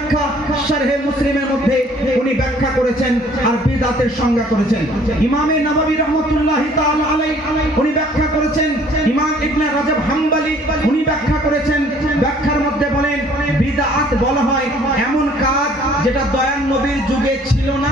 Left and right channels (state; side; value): normal; both; correlation 0.57